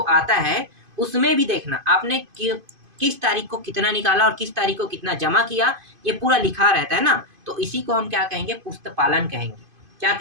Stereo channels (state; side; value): late; left; 2.5 ms